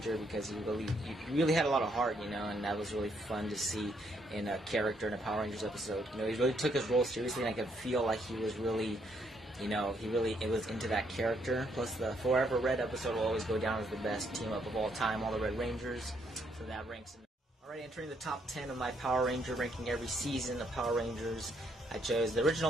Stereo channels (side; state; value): both; normal; correlation 0.72